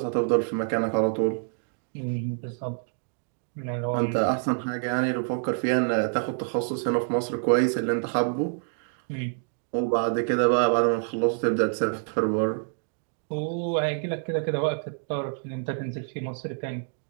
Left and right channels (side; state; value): left; silent; 59 dB below the other